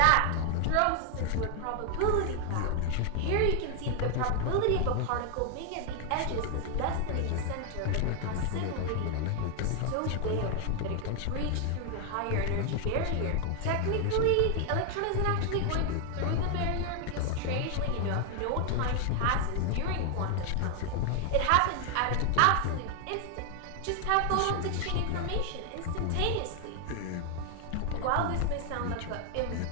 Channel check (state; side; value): different; both; correlation 0.00